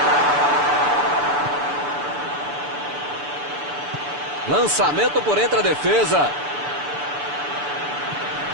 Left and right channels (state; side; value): late; left; 6.9 ms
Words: Lançamento por entre a defesa.